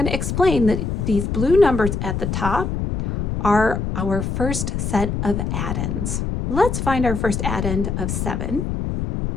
to explain that these blue numbers at the top are our first set of addends. Let's find our first addend of 7.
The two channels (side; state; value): left; noise; rumble, 2 dB below the sound